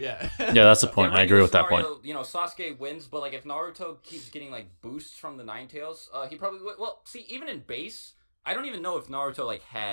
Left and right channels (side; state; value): both; inverted; correlation -1.00